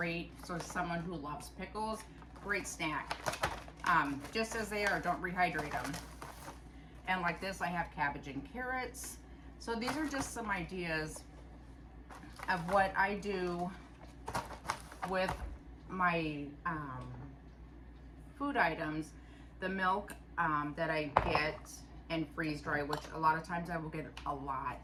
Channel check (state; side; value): identical; both; correlation 1.00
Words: So someone who loves pickles, great snack. Just as they are, don't rehydrate them. And like this, I have cabbage and carrots. So these are just some ideas of what I do with my food items. The milk that I get and freeze dry, which a lot of times I will get a